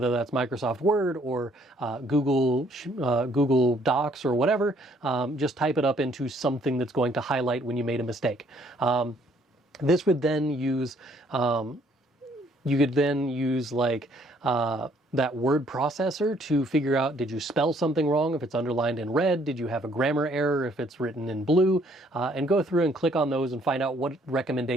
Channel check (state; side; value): normal; both; correlation 0.64